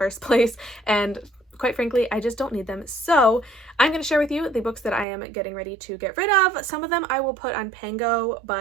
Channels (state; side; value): drops out; left; at 5.1 s